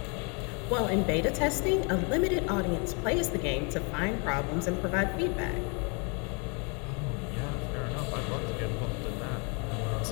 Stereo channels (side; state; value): right; quieter; 34.6 dB